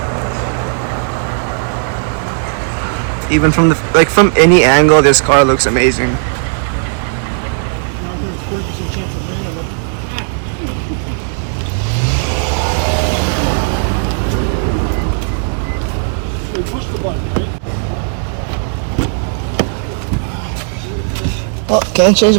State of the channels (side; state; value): left; silent; digital silence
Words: Even from from any angle, this car looks amazing. Well, can't change